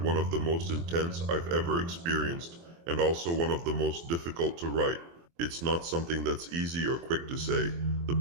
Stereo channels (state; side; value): late; left; 24 ms